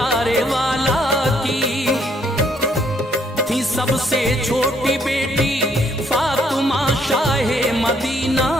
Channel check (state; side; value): normal; both; correlation 0.69